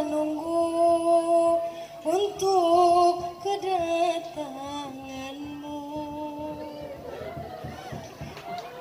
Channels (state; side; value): identical; both; correlation 1.00